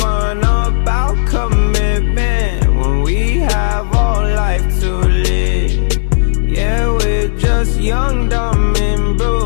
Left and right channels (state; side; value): silent; right; digital silence